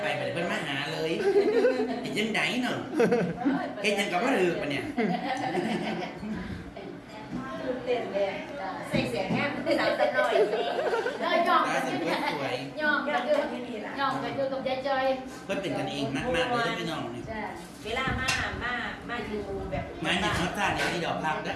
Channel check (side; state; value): both; identical; correlation 1.00